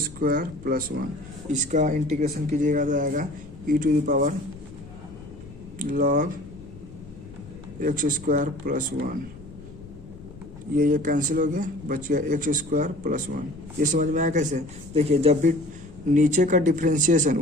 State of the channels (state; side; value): noise; left; rumble, 19 dB below the sound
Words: स्क्वायर प्लस 1। इसका इंटीग्रेशन कीजिएगा तो आएगा ई to power log X square plus 1। ये कैंसिल हो गया, बच गया एक्स स्क्वायर प्लस 1। ये समझ में आया कैसे? देखिए जब भी नीचे का डिफ्रेंशिएशन